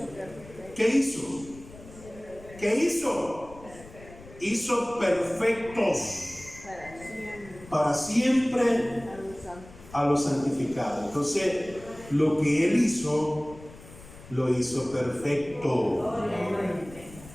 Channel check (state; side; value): noise; left; rumble, 19 dB below the sound